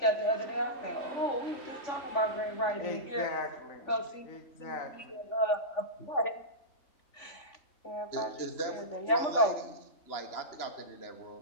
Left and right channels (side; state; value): right; late; 3.5 ms